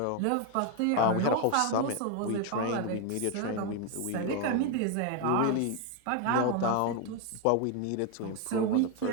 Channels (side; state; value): both; different; correlation 0.01